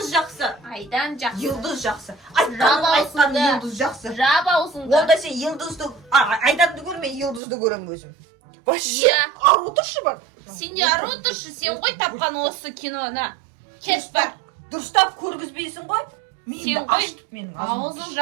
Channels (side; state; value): left; drops out; at 7.4 s